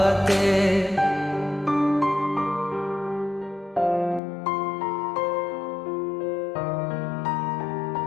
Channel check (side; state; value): right; drops out; at 4.2 s